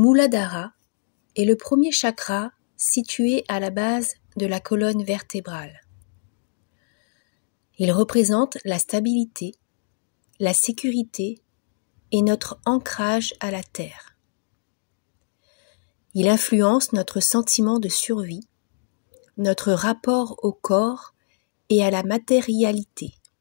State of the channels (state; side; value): silent; right; digital silence